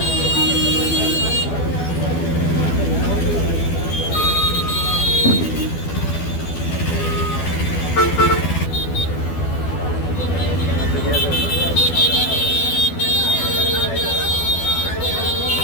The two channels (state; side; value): late; right; 12 ms